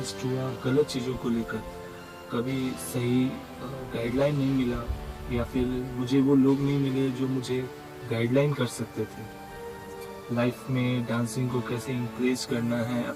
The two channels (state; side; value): identical; both; correlation 1.00